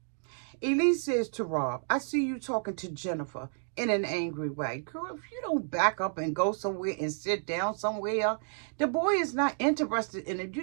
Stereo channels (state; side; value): silent; left; 57 dB below the other